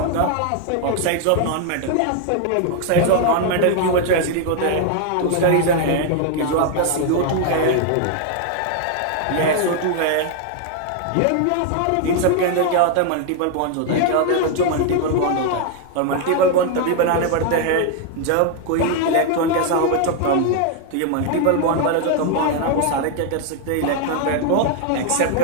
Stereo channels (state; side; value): different; both; correlation 0.00